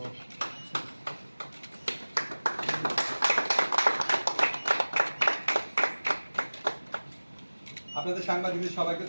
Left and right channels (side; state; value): both; inverted; correlation -1.00